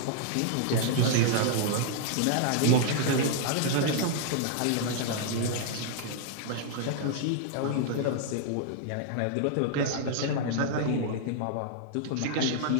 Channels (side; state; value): both; different; correlation -0.01